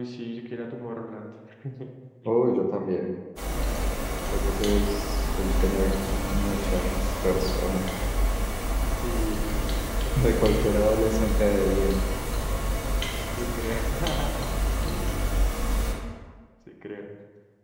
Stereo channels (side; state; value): both; identical; correlation 1.00